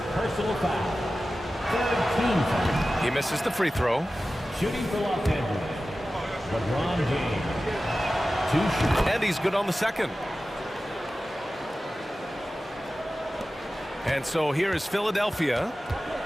personal foul. 3rd team foul. He misses the free throw. Shooting for Los Angeles. LeBron James. 2 shots. And he's good on the second. And so here is Philadelphia.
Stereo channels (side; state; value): both; normal; correlation 0.95